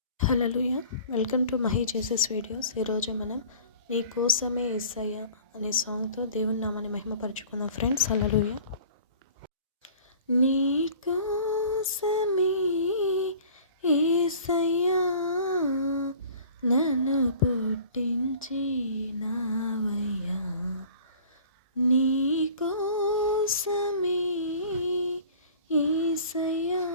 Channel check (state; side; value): inverted; both; correlation -0.47